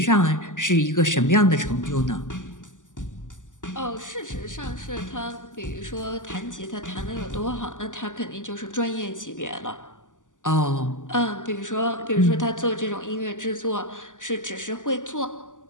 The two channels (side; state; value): right; late; 0.87 ms